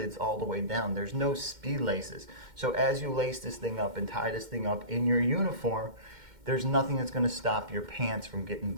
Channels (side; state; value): left; late; 2.1 ms